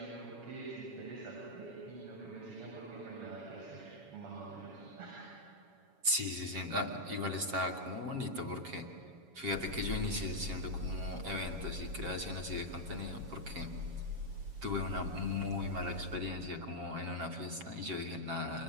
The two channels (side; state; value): left; late; 7.2 ms